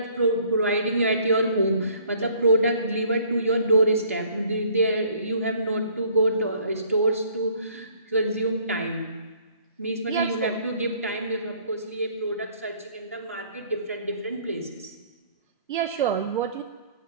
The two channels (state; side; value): inverted; both; correlation -0.58